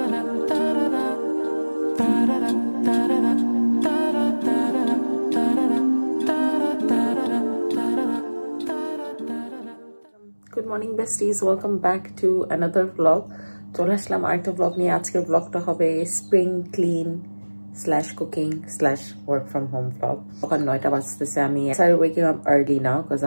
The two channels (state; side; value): inverted; both; correlation -1.00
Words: morning besties, welcome back to another vlog. চলে আসলাম আরেকটা vlog নিয়ে। আজকের vlogটা হবে spring clean / cooking / work from home vlog। সকাল 9টা বাজতেছে। আমি started waking up early now because